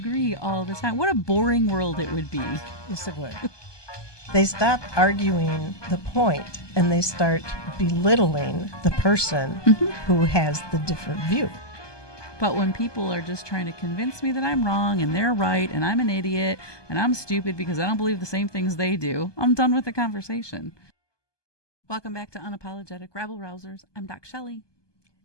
all the time. What a boring world it would be. Yes, it would. They stop arguing the point and they start belittling the person who has the different view. But when people are just trying to convince me that I'm wrong and they're right and I'm an idiot and I'm stupid because I don't believe the same things they do, I'm done with the conversation. Welcome back to Unapologetic Rabble-Rousers. I'm DocShellie.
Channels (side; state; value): right; late; 1.2 ms